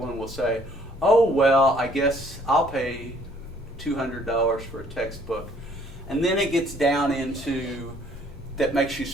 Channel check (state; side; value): normal; both; correlation 0.61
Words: will say, oh, well, I guess I'll pay $200 for a textbook. And then it gets down into that makes you